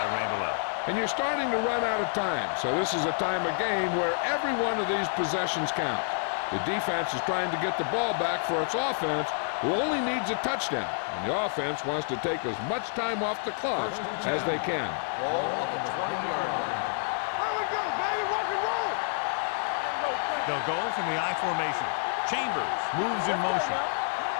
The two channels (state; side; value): silent; right; digital silence